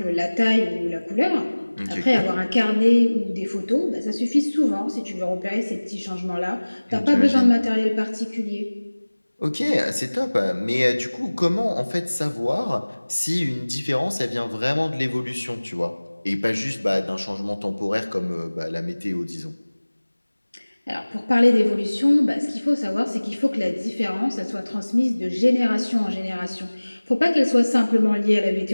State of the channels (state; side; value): inverted; both; correlation -1.00